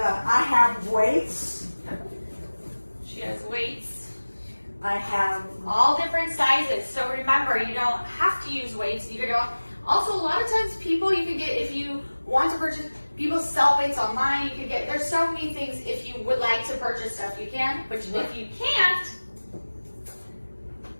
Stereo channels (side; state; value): both; inverted; correlation -1.00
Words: have weights. She has weights. I have all different sizes. So remember, you don't have to use weights. You can go. Also, a lot of times people you can get, if you want to purchase, people sell weights online. You can get, there's so many things. If you would like to purchase stuff, you can. But if you can't,